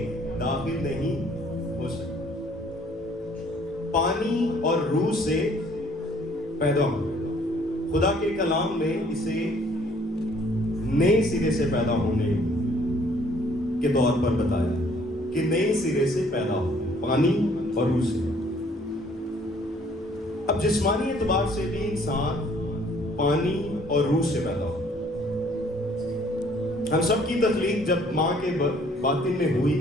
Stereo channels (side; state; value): both; normal; correlation 0.60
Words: داخل نہیں ہو سکتا. پانی اور روح سے پیدا ہو. خدا کے کلام میں اسے نئے سرے سے پیدا ہونے کے طور پر بتایا کہ نئے سرے سے پیدا ہو، پانی اور روح سے. اب جسمانی اعتبار سے بھی انسان پانی اور روح سے پیدا ہو. ہم سب کی تخلیق جب ماں کے باطن میں ہوئی